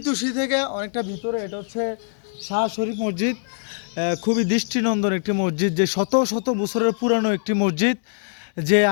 থেকে অনেকটা ভিতরে। এটা হচ্ছে শাহ শরীফ মসজিদ। খুবই দৃষ্টিনন্দন একটি মসজিদ, যে শত শত বছরের পুরানো একটি মসজিদ। যে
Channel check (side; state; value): right; silent; digital silence